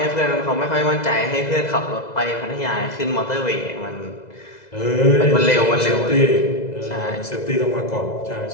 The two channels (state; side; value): late; right; 2.0 ms